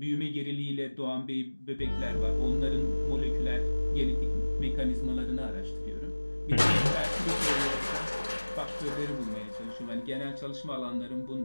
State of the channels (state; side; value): inverted; both; correlation -1.00